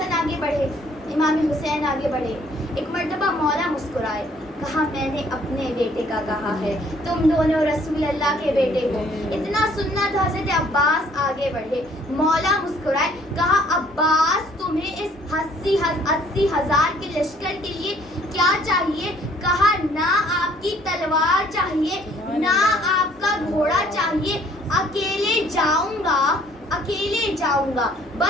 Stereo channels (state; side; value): normal; both; correlation 0.60